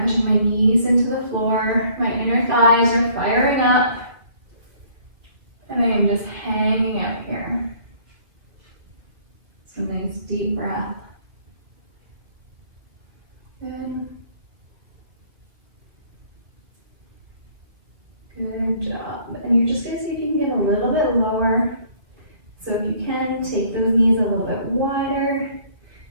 pushing my knees into the floor. My inner thighs are firing up. And I am just hanging out here. So nice deep breath. Good. Good job. And you're just going to see if you can get a little bit lower. So if you can, take those knees a little bit wider.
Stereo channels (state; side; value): late; left; 2.7 ms